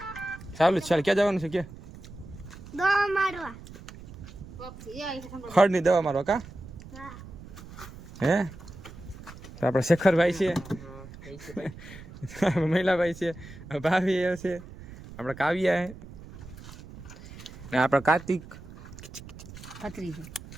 ચાલુ જ ચાલ ક્યાં જવાનું છે કે દવા મારવા ખડની દવા મારવા કા હે તો આપણે શેખરભાઈ છે મહિલાભાઈ છે ભાભી છે આપણે કાવ્યા હે ને આપણે કાર્તિક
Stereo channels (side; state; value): right; noise; rumble, 16 dB below the sound